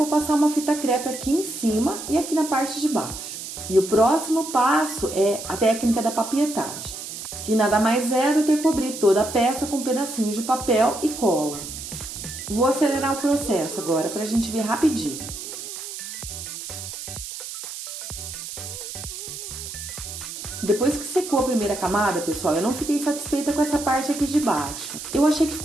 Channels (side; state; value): right; noise; hiss, 9 dB below the sound